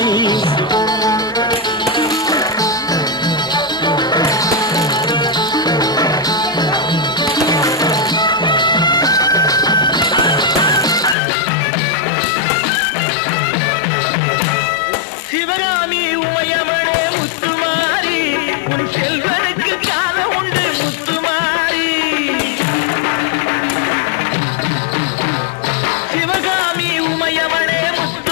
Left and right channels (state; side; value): drops out; right; at 11.2 s